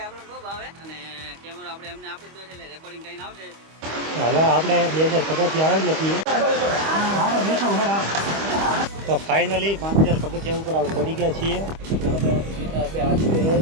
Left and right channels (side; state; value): left; late; 25 ms